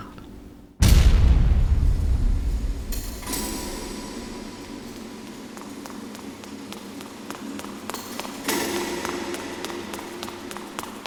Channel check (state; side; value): identical; both; correlation 1.00